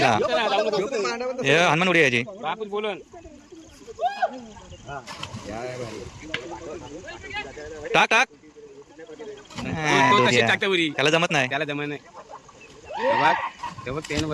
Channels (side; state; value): both; identical; correlation 1.00